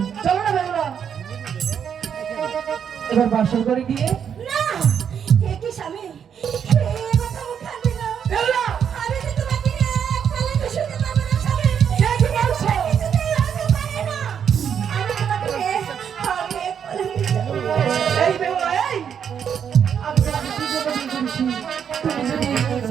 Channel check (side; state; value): left; quieter; 7.9 dB